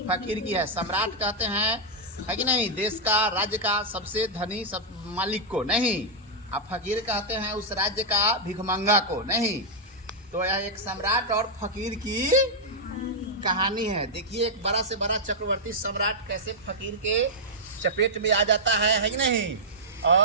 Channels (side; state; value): both; normal; correlation -0.06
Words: फकीर की है। सम्राट कहते हैं, है कि नहीं, देश का, राज्य का सबसे धनी सब मालिक को नहीं। अब फकीर कहते हैं उस राज्य का भिखमंगा को नहीं। तो यह एक सम्राट और फकीर की कहानी है। देखिए, एक बड़ा से बड़ा चक्रवर्ती सम्राट कैसे फकीर के चपेट में आ जाता है कि नहीं,